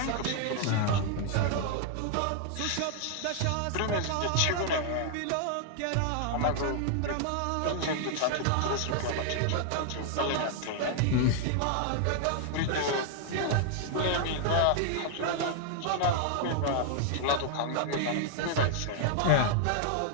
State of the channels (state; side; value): different; both; correlation 0.00